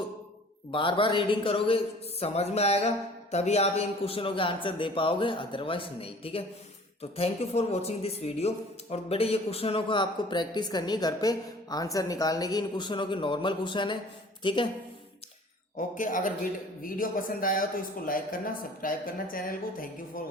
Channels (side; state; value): both; normal; correlation 0.49